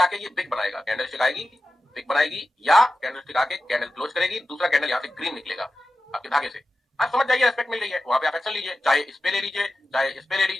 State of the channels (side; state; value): both; normal; correlation 0.93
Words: ये बिग बनाएगा, कैंडल स्टिक आएगी बिग बनाएगी, या कैंडल स्टिक आके कैंडल क्लोज करेगी, दूसरा कैंडल यहाँ से ग्रीन निकलेगा आपके धागे से, आप समझ जाइए रेस्पेक्ट मिल रही है, वहां पे आप एक्शन लीजिए, चाहे इस पे ले लीजिए, चाहे इस पे ले